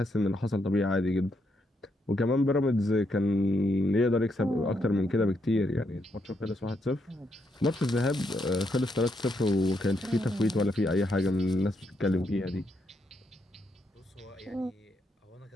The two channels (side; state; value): both; normal; correlation 0.78